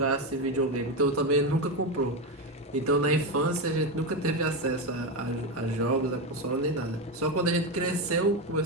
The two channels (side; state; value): both; normal; correlation 0.13